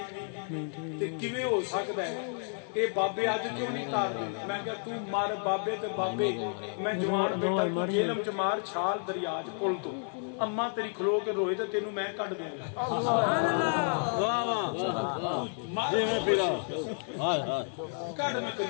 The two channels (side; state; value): right; silent; 57 dB below the other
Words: تے کیویں ہو سکدا ہے اے بابے اج کیوں نہیں تارتے میں کہ تو مار بابے تے بابے میں جوان بیٹا تو جیلم چ مار چھال دریا چ پل تو اما تیری کھلو کے روئے تے تینوں میں کڈ دوں گا سبحان اللہ واہ واہ جی میں پھرا ہائے ہائے کڈ میں